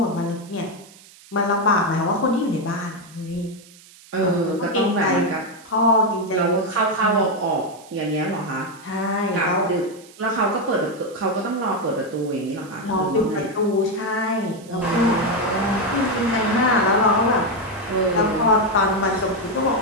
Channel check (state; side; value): noise; right; hiss, 23 dB below the sound